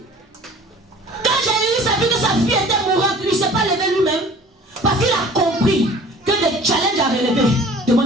Quand Jésus a vu que sa fille était mourante, il ne s'est pas levé lui-même. Parce qu'il a compris que les challenges à relever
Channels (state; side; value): normal; both; correlation 0.47